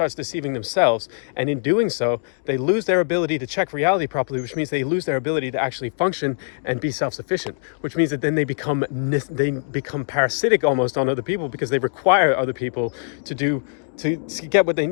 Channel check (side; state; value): right; silent; 64 dB below the other